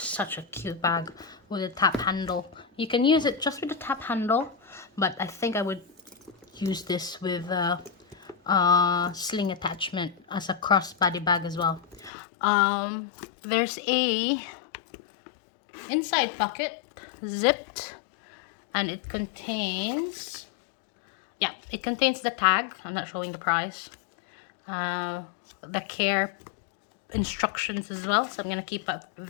a cute bag with a tap handle. You can use it just with the tap handle, but I think I would use this with a sling attachment as a crossbody bag as well. There's a inside pocket, zipped, and it contains, yeah, it contains the tag. I'm not showing the price. The care instructions as well, so I'm gonna keep up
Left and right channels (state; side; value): drops out; right; at 12.1 s